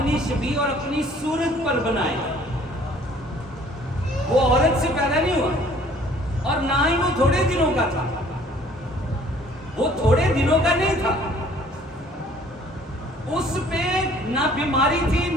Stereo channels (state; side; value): normal; both; correlation 0.55